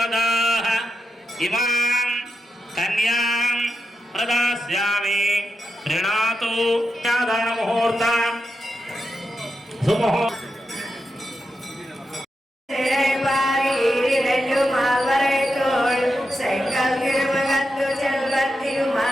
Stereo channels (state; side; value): normal; both; correlation 0.87